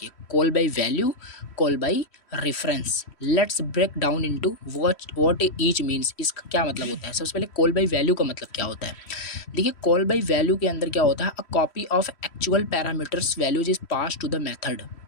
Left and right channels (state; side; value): late; right; 3.1 ms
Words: call by value, call by reference. Let's break down into what each means. इसका क्या मतलब होता है। सबसे पहले कॉल बाय वैल्यू का मतलब क्या होता है। देखिए कॉल बाय वैल्यू के अंदर क्या होता है, a copy of actual parameters values is pass to the method.